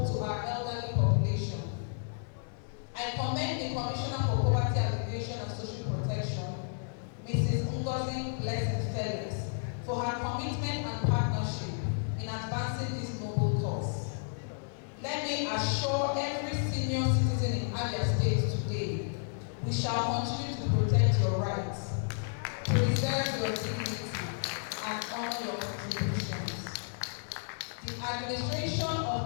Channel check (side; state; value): right; silent; 56 dB below the other